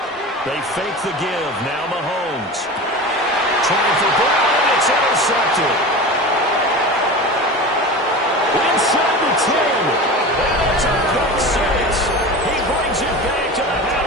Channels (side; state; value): both; normal; correlation 0.30